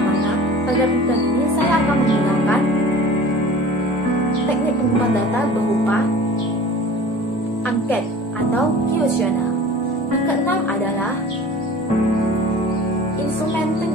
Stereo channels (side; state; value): both; normal; correlation 0.42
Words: mana pada penelitian ini saya akan menggunakan teknik pengumpulan data berupa angket atau kuesioner. Yang keenam adalah instrumen